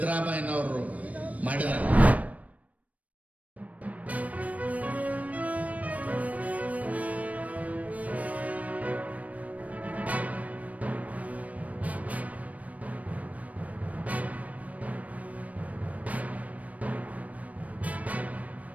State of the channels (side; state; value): left; late; 0.069 ms